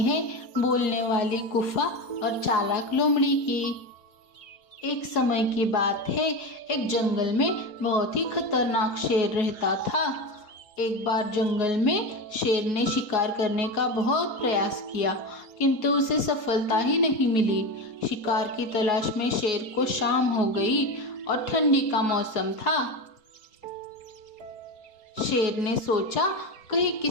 है बोलने वाली गुफा और चालाक लोमड़ी की। एक समय की बात है, एक जंगल में बहुत ही खतरनाक शेर रहता था। एक बार जंगल में शेर ने शिकार करने का बहुत प्रयास किया, किंतु उसे सफलता ही नहीं मिली। शिकार की तलाश में शेर को शाम हो गई और ठंडी का मौसम था। शेर ने सोचा कहीं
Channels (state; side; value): late; right; 4.3 ms